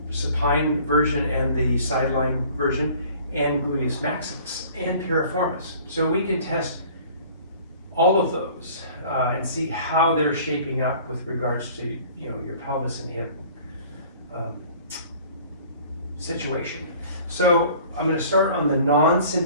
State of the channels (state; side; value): inverted; both; correlation -0.49